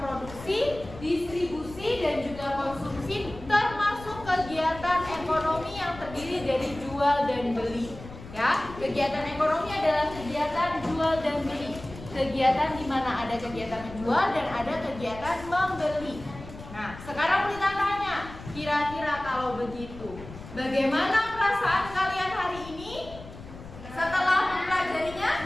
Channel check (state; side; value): noise; left; rumble, 15 dB below the sound